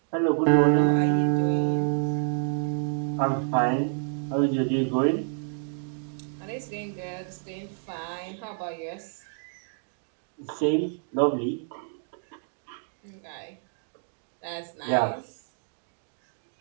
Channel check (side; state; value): left; silent; digital silence